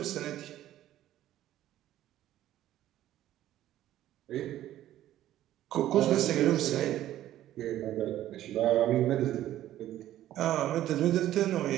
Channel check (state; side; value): quieter; left; 13.1 dB